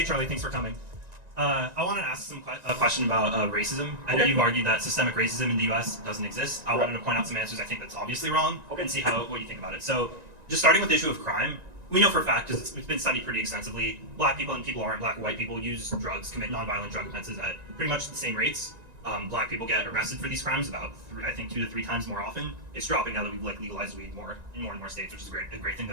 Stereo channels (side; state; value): left; late; 1.9 ms